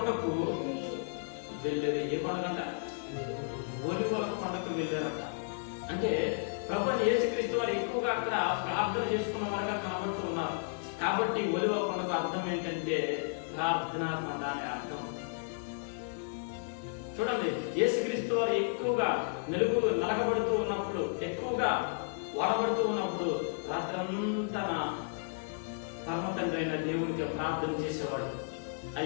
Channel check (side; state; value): right; silent; 56 dB below the other